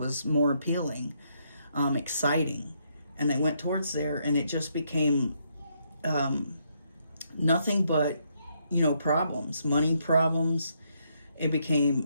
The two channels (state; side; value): inverted; both; correlation -0.75